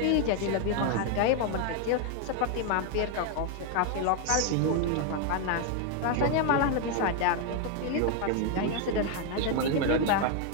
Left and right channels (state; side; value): different; both; correlation 0.01